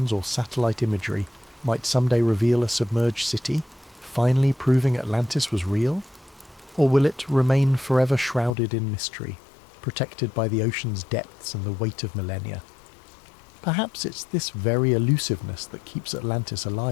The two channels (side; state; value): right; drops out; at 8.5 s